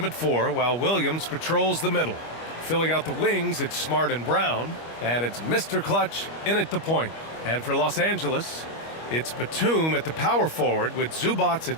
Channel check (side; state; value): right; late; 25 ms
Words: at 4, while Williams patrols the middle. Filling out the wings, it's Smart and Brown, and it's Mr. Clutch in at the point. And for Los Angeles, it's Batum at the power forward with Zubac